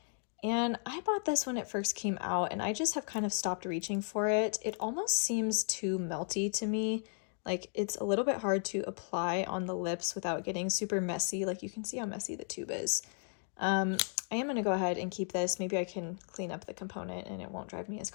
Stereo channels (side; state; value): right; silent; 55 dB below the other